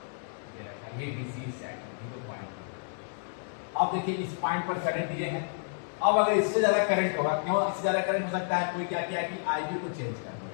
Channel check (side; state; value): right; silent; digital silence